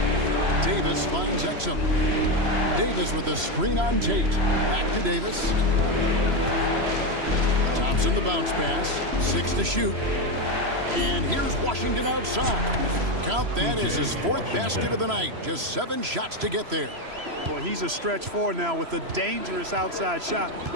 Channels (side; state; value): left; late; 3.0 ms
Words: Davis finds Exum. Davis with a screen on Tate. Back to Davis. Thompson the bounce pass. 6 to shoot. And here's Washington outside. Count that as his 4th basket of the night. Just 7 shots to get there. Boy, he's a stretch 4 now with a dangerous outside shot.